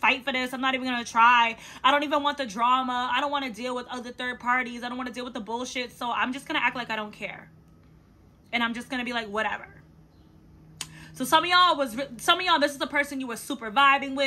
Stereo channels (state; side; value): identical; both; correlation 1.00